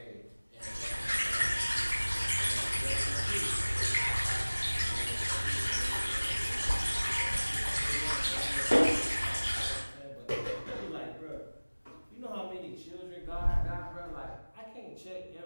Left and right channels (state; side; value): inverted; both; correlation -1.00